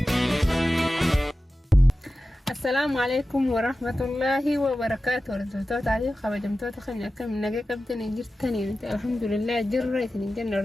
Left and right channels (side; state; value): both; normal; correlation 0.94